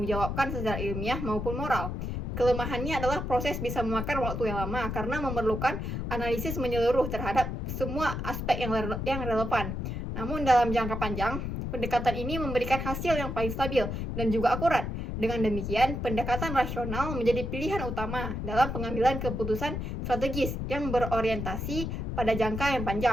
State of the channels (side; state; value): left; noise; rumble, 4 dB below the sound